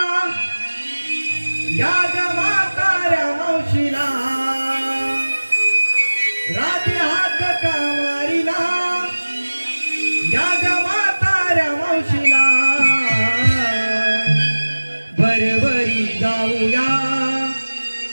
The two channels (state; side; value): inverted; both; correlation -1.00